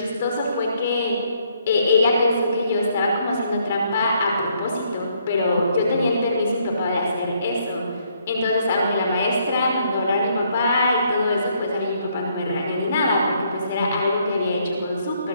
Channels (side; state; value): both; inverted; correlation -0.70